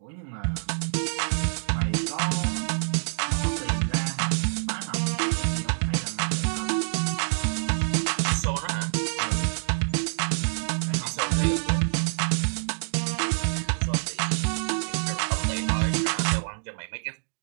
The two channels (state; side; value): silent; left; digital silence